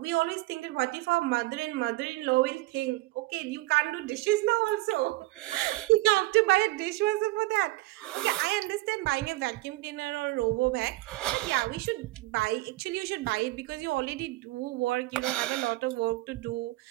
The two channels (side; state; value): left; quieter; 19.4 dB